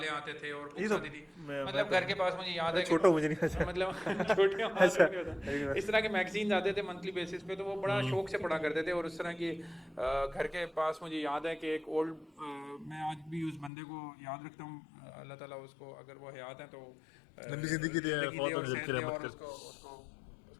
आते थे और ये बुक्स तो आती थी, मैं मतलब घर के पास मुझे याद है छोटा मुझे नहीं अच्छा। मतलब छोटे अच्छा। इस तरह के मैगजीन्स आते थे मंथली बेसिस पे, तो वो बड़ा शौक से पढ़ा करते थे। और उस तरह की घर के पास मुझे याद है कि एक ओल्ड, मैं आज भी उस बंदे को याद रखता हूँ, अल्लाह ताला उसको अगर वो हयात है तो लंबी जिंदगी दे, फौत होने सेहत की दे रहमत और कर। उसको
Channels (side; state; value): right; drops out; at 13.7 s